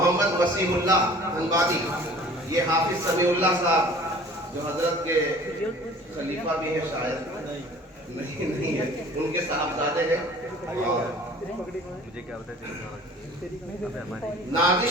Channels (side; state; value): both; normal; correlation 0.48